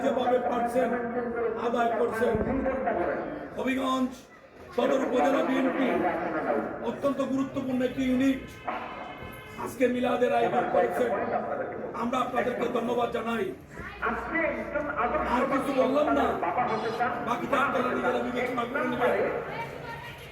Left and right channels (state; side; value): identical; both; correlation 1.00